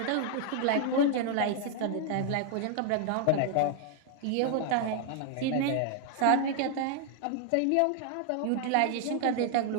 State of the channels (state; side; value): different; both; correlation 0.00